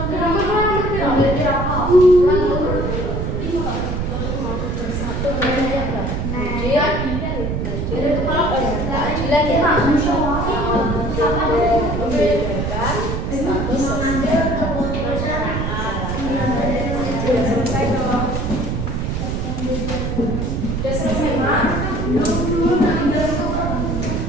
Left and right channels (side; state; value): right; noise; rumble, 2 dB below the sound